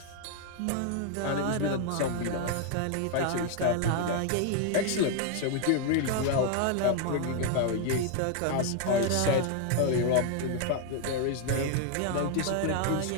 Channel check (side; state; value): both; different; correlation 0.00